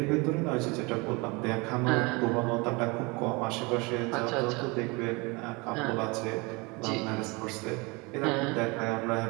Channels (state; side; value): quieter; left; 27.0 dB